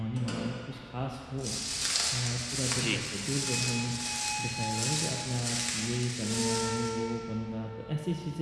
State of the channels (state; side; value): identical; both; correlation 1.00